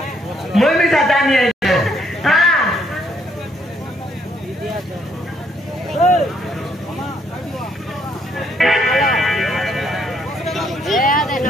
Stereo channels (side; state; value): both; normal; correlation 0.70